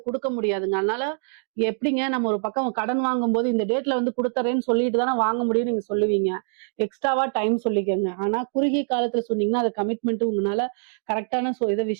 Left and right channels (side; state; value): left; silent; 62 dB below the other